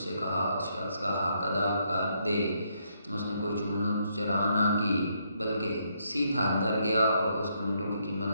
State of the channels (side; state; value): both; inverted; correlation -0.75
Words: कहा, उस शख्स का हक अदा कर दे। उसने कोई चूनो चरा ना की बल्कि सीधा अंदर गया और उसके ऊँटों की कीमत